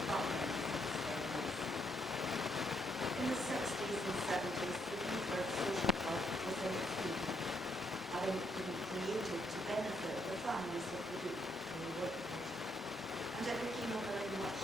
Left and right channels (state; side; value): normal; both; correlation 0.75